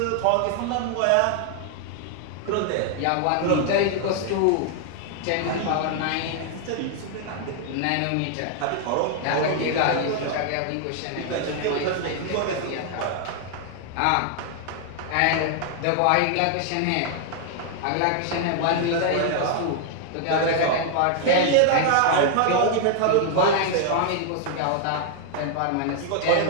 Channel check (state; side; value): different; both; correlation 0.00